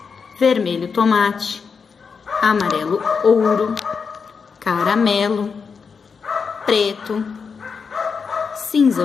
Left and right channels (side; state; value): right; quieter; 5.6 dB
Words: vermelho tomate, amarelo ouro, caramelo, preto,